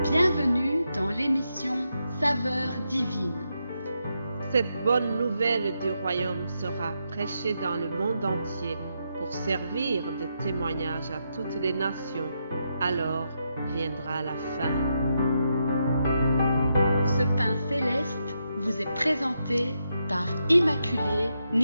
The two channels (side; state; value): both; inverted; correlation -0.82